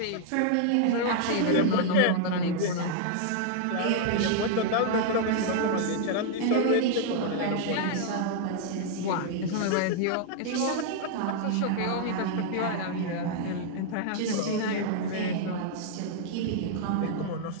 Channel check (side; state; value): both; different; correlation -0.01